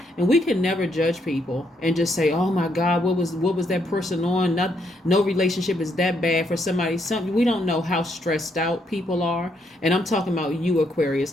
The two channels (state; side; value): normal; both; correlation 0.75